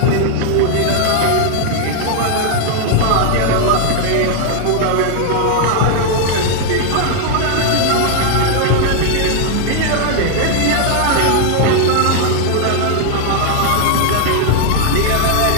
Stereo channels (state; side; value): different; both; correlation 0.00